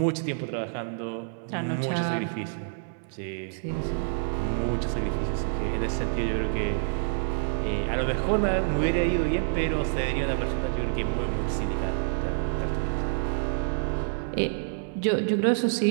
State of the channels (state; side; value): silent; left; 60 dB below the other